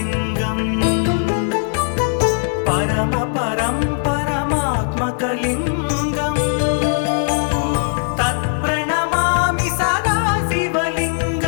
परमपरं परमात्मकलिङ्गम् तत्प्रणमामि सदा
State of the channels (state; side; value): silent; right; digital silence